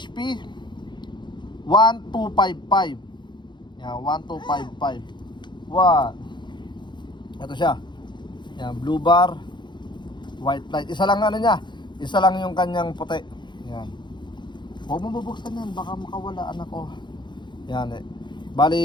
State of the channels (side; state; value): right; late; 0.22 ms